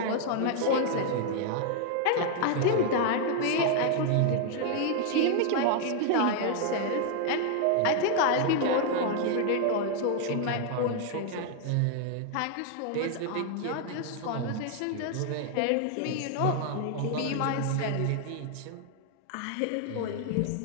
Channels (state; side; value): different; both; correlation 0.00